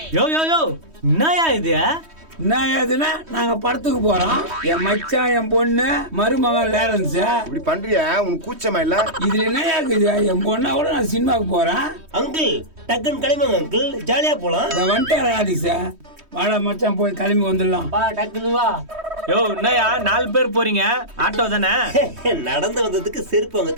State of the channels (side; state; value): left; late; 3.2 ms